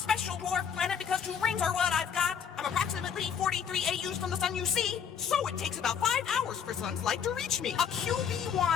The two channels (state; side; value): quieter; right; 7.7 dB